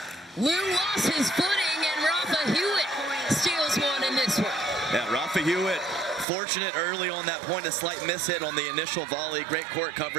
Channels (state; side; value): drops out; left; at 6.2 s